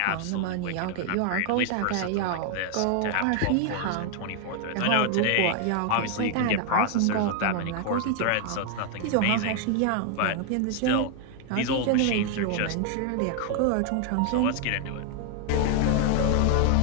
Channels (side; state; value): both; different; correlation 0.00